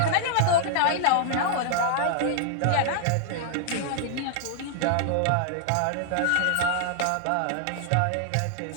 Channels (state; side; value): different; both; correlation 0.00